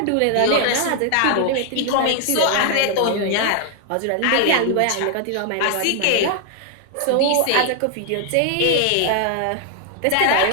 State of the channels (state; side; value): different; both; correlation 0.00